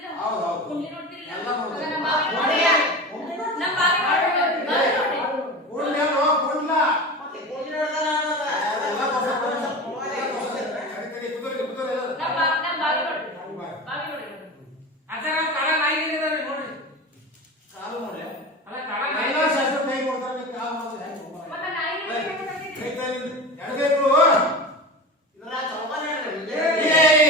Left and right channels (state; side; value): normal; both; correlation 0.29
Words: ಹೌದು, ಹೌದು. ಕುಂಡ್ಲಿ ನೋಡ್ತಿರಿಲ್ಲ? ಎಲ್ಲ ನೋಡ್ತೀವಿ. ಹಂಗಾರ ನಮ್ಮ ಬಾವಿ ನೋಡಿ. ನೋಡ್ರಿ. ನಮ್ಮ ಬಾವಿ ನೋಡ್ರಿ. ಬಾವಿ ನೋಡ್ರಿ. ಕೂಡ್ಲಿ ಅಲ್ವೋ, ಕೂಡ್ಲ. ಮತ್ತೆ ಗೋಧಿ ನೋಡ್ದಲ್ಲ ಅನ್ನೋದ. ಎಲ್ಲ ತೋರ್ಸು, ಕರಿ, ಕುದುರೆ, ಕುದುರೆ ಎಲ್ಲ. ನಮ್ಮ ಬಾವಿ ನೋಡ್ರಿ. ಬಾವಿ. ಬಾವಿ ನೋಡ್ರಿ. ಅಜ್ಜರ ಕಾಲ ನಾಯಿಗಳಿದಾವೆ ನೋಡ್ರಿ. ಕಾಲು ನೋಡಿ. ಅಲ್ಲ ಕಾಲ ಎಲ್ಲ ಶಾಸ್ತ್ರ ಕೈ ಕೊಡ್ತಾರೆ, ನೀವು ಕಾಲು ಮಾಡಿದ್ರೆ ಹೆಂಗೆ ಹೋಗೋಣ? ಮತ್ತೆ ನಾಯಿ ಕೈ ತಾಯಿಲಿಂದ ಎಡಗೈಗಳು. ಇದ್ರಾಗ ಚೌಕಾನೆ ಹೇಳ್ರಿ ಇದು.